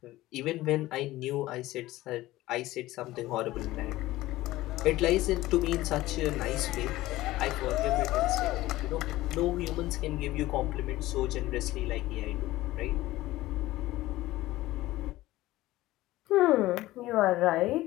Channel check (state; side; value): quieter; right; 17.1 dB